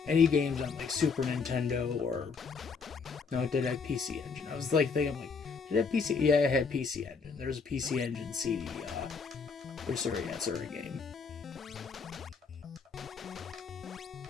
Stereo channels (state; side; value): quieter; right; 5.2 dB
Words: any games on, like, Super Nintendo or... No, it did have PC Engine. I was, like, thinking, like, did it have PC? Yeah, it had PC Engine. There was a PC Engine CD, Urusei Yatsura game.